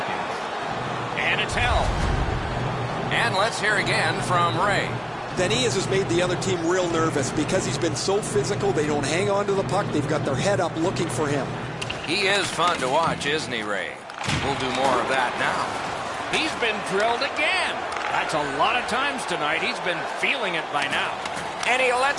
And it's held. And let's hear again from Ray. Denis has made the other team real nervous because he's been so physical. They don't hang on to the puck. They've got their head up looking for him. He is fun to watch, isn't he, Ray? We'll do more of that now. He's been drilled again. That's a lot of times tonight. He's been feeling it by now. And he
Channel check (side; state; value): both; identical; correlation 1.00